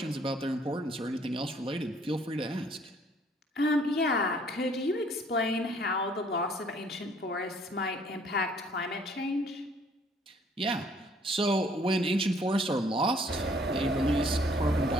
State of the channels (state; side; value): normal; both; correlation 0.61